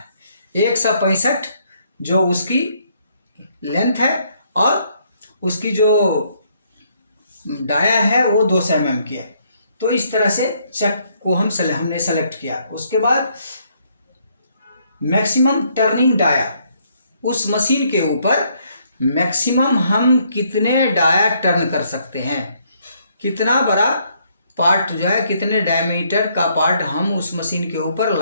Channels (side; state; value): both; inverted; correlation -0.70